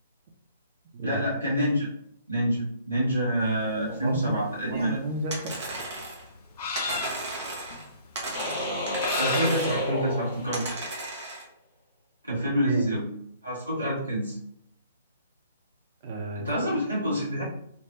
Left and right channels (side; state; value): both; inverted; correlation -0.59